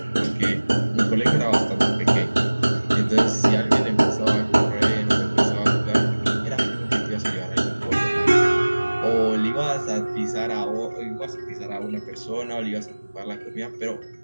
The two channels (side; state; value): both; inverted; correlation -1.00